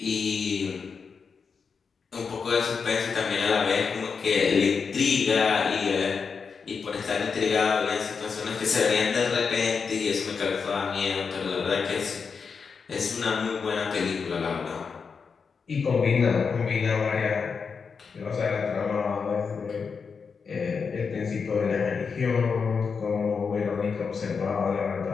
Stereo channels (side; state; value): right; quieter; 5.6 dB